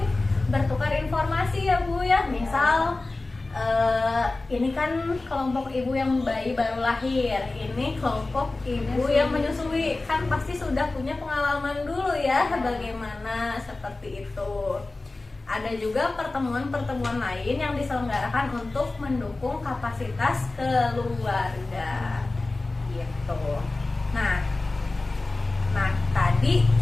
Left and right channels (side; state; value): right; quieter; 3.2 dB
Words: bertukar informasi ya Bu ya. Misal ini kan kelompok ibu yang bayi baru lahir, ini kelompok ibu yang menyusui, kan pasti sudah punya pengalaman dulu ya bagaimana seperti itu. Ada juga pertemuan-pertemuan lain yang diselenggarakan untuk mendukung kapasitas keluarga gitu. Nah, tadi